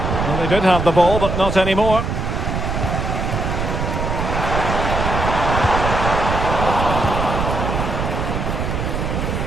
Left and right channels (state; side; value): noise; right; rumble, 2 dB below the sound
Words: Well, they did have the ball, but not anymore.